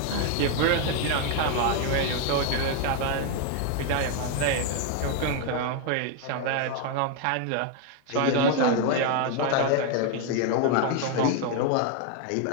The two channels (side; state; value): both; different; correlation 0.01